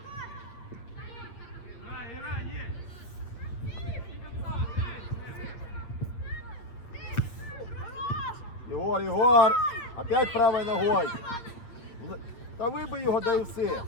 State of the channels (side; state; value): right; late; 8.6 ms